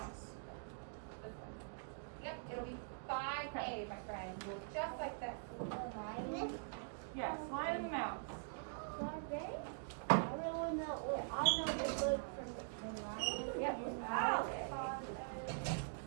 Yep, it'll be 5A, my friend. Just like this. Yes, Lion and the Mouse. I really know. I know the word from the lion. Yep. Oh.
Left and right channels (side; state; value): left; silent; digital silence